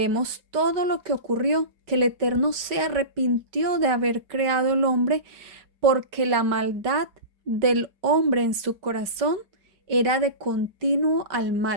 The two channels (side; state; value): left; late; 5.2 ms